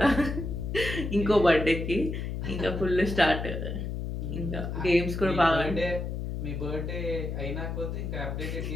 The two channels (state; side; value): noise; left; hum, 4 dB below the sound